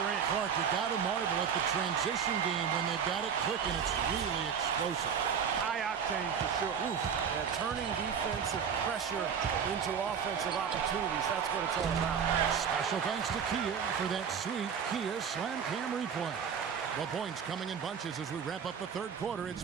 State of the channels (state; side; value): quieter; left; 7.2 dB